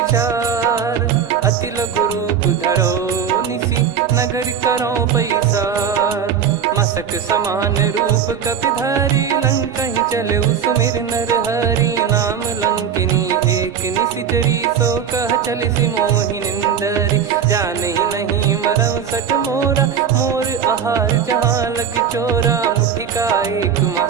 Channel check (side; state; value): left; quieter; 7.7 dB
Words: अति लघु रूप धरो निसी नगर करो पैसार मसक समान रूप कपिधारी लंकहि चले सुमिर नर हरि नाम लंकिनी एक निशिचरी सो कह चल सि मोहि निंदरी जानहि नहीं मरम सठ मोरा मोर आहार जहाँ लग चोरा मुठिका एक